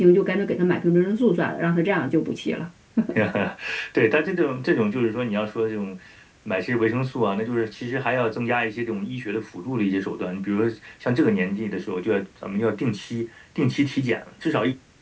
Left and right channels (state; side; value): identical; both; correlation 1.00